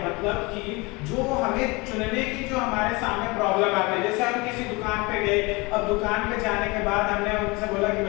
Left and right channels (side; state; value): right; quieter; 25.6 dB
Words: मतलब कि जो हमें चुनने की जो हमारे सामने प्रॉब्लम आती है। जैसे हम किसी दुकान पे गए, अब दुकान पे जाने के बाद हमने उनसे बोला कि